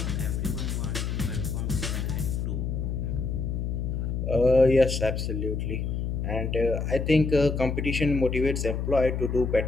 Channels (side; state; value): left; noise; hum, 2 dB below the sound